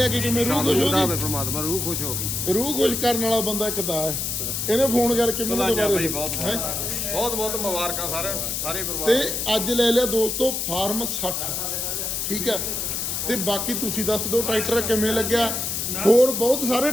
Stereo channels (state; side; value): noise; left; hiss, 2 dB below the sound